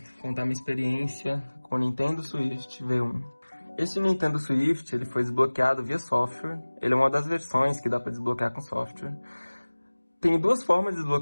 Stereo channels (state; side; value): inverted; both; correlation -1.00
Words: contar minha experiência com o Nintendo Switch V1. Esse Nintendo Switch ele foi desbloqueado via software, ele é uma das versões que dá para desbloquear com software. Tem duas formas de